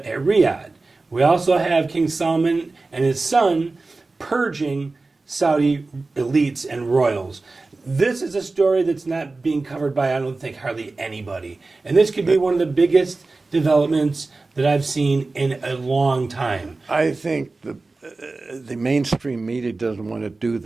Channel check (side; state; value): left; quieter; 3.5 dB